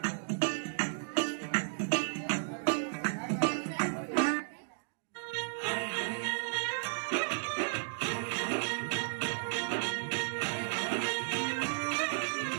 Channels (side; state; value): left; silent; digital silence